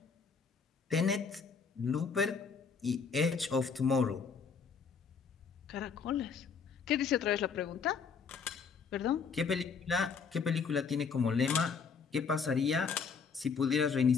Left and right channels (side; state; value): right; quieter; 5.7 dB